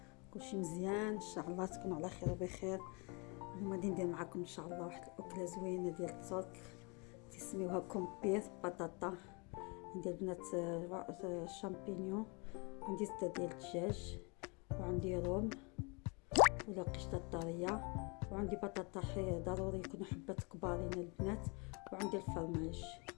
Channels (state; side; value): quieter; right; 31.2 dB